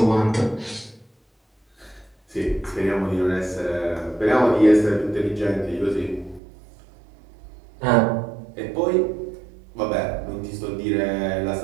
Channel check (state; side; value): drops out; left; at 6.4 s